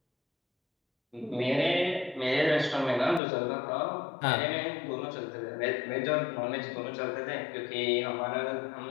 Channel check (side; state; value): right; drops out; at 3.2 s